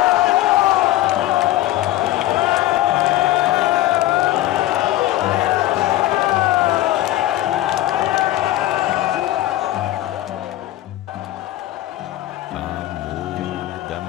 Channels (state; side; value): quieter; right; 15.3 dB